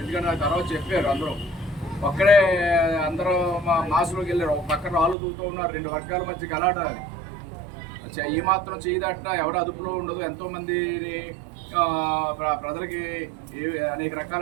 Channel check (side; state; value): left; drops out; at 5.2 s